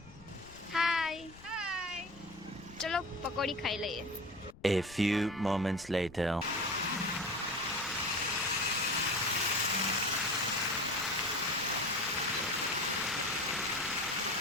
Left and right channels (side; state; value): left; noise; rumble, 21 dB below the sound